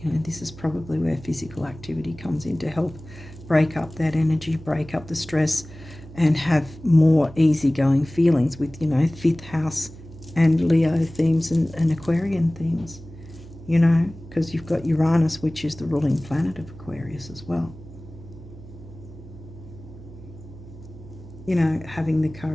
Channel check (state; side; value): noise; right; hum, 17 dB below the sound